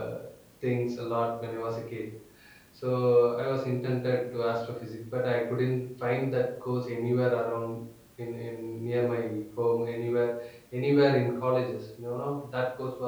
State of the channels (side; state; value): both; identical; correlation 1.00